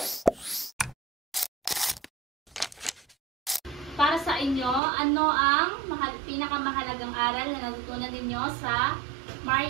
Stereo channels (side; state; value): left; drops out; at 4.8 s